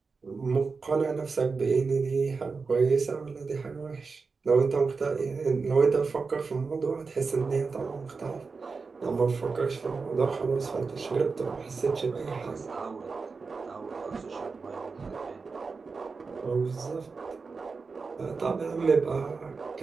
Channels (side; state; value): left; quieter; 4.6 dB